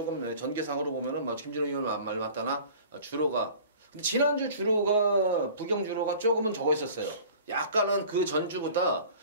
전개상으로 보면은 뭐 김준호 의원 말 맞다나 주로가 근데 지난주 주로가 부경 주로가 조금은 적어 있었어요. 약간은 그 전주보다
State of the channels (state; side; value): inverted; both; correlation -0.45